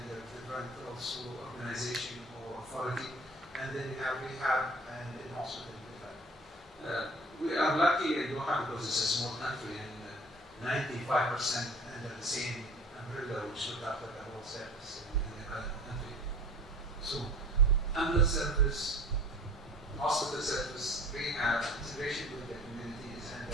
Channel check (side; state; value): both; normal; correlation 0.45